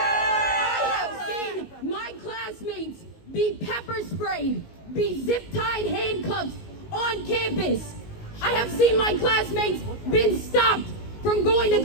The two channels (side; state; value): right; late; 19 ms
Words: have seen my classmates be pepper sprayed, be zip-tied handcuffed on campus. I have seen my classmates been stopped from going to